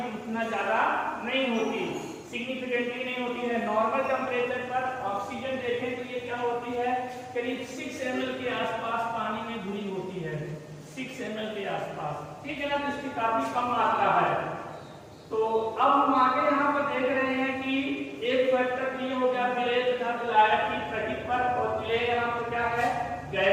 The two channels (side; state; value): both; identical; correlation 1.00